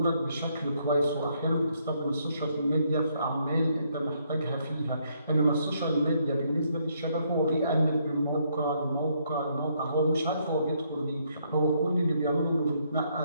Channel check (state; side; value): inverted; both; correlation -0.72